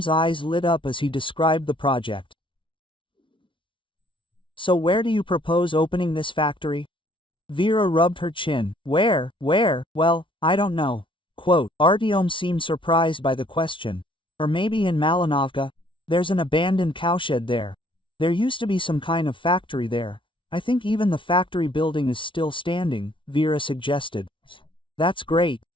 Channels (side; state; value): right; late; 0.25 ms